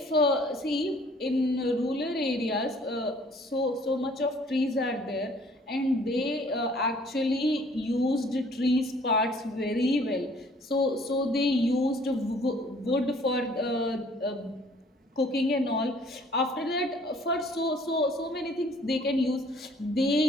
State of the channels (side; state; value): both; normal; correlation 0.57